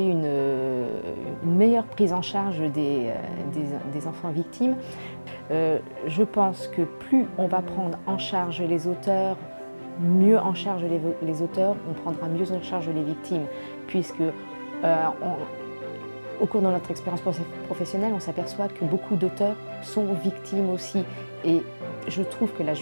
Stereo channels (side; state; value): both; inverted; correlation -1.00